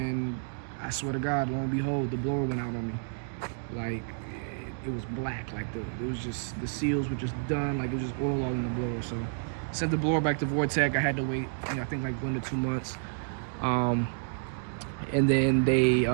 I swear to God, lo and behold, the blower went out on me. Like it was black. Like it was just, the seals were just done. Like it was just oil all in the blower. So sent the blower back to Vortech. I had to wait, you know, I think like 1 to 2 months. And then they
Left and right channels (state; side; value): silent; left; digital silence